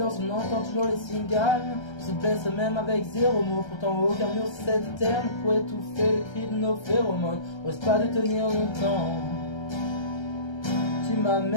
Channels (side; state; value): right; late; 1.3 ms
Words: on entend toujours les cigales. On se blesse même avec zéro mot. Pourtant aucun mur cette terre ne pourrait étouffer les cris de nos phéromones. Ose pas de tenir longtemps. Tu m'as